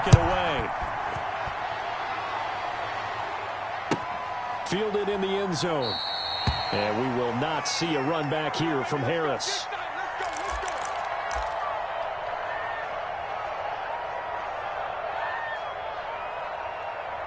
it away. Fielded in the end zone. And we will not see a run back here from Harris.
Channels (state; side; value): identical; both; correlation 1.00